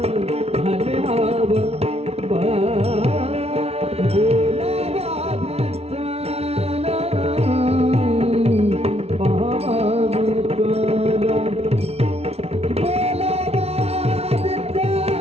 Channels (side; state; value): left; late; 0.30 ms